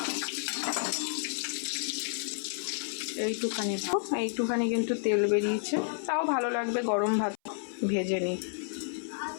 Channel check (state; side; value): silent; right; 57 dB below the other